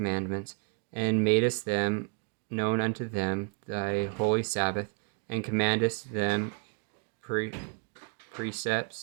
and madest them known unto them thy holy Sabbath, and commandest them precepts,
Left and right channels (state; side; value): quieter; left; 35.9 dB